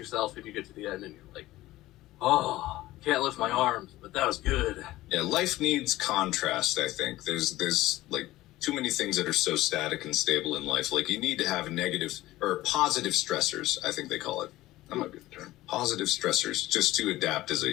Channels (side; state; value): right; quieter; 16.8 dB